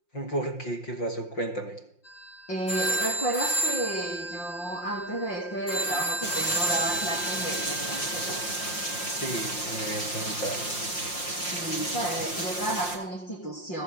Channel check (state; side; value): late; right; 5.7 ms